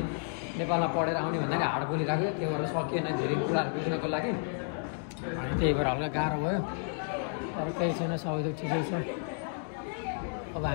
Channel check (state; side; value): silent; right; 57 dB below the other